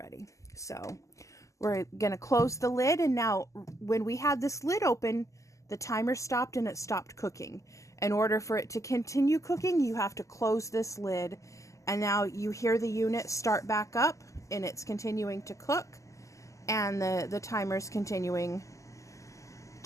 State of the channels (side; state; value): right; late; 0.16 ms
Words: So we're gonna close the lid, and now when we had this lid open, the timer stopped and it stopped cooking. In order for it to continue cooking, you have to close this lid, and now you hear the unit start back up, and it's continuing to cook, and the timer's continuing